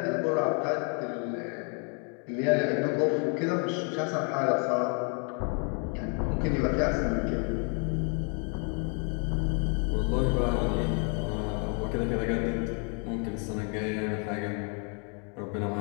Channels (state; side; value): quieter; right; 37.8 dB